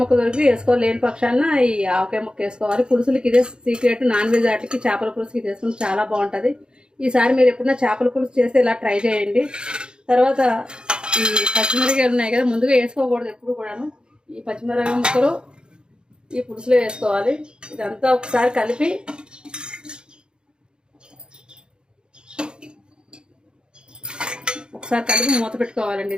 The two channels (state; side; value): late; left; 0.049 ms